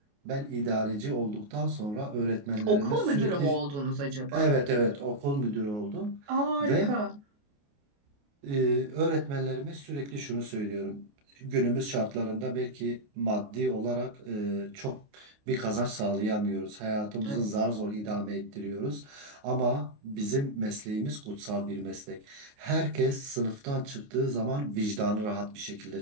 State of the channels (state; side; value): late; left; 28 ms